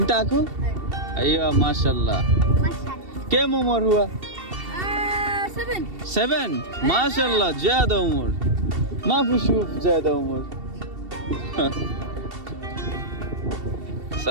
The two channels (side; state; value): left; late; 2.7 ms